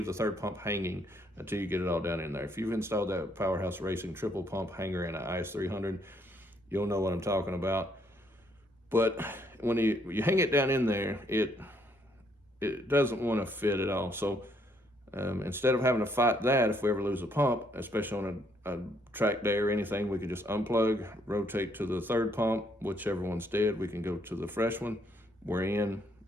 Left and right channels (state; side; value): normal; both; correlation 0.70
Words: the third pump hanging until you get it all down in there. If you've installed that Powerhouse Racing triple pump hanger in an IS300, you'll know what I'm talking about. But when you hang it down in there, it doesn't want to fit at all. So instead of having to fight that, if we ever lose a pump, especially on a track day or anything, we can just unplug, rotate to the third pump, whichever one's dead, we can go to the fresh one. We're in,